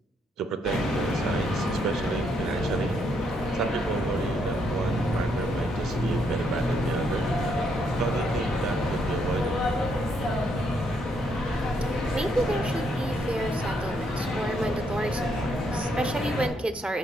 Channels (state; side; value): normal; both; correlation 0.74